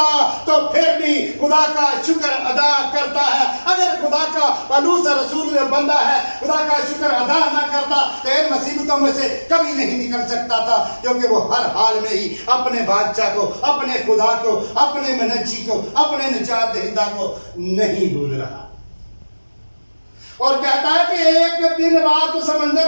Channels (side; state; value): both; inverted; correlation -1.00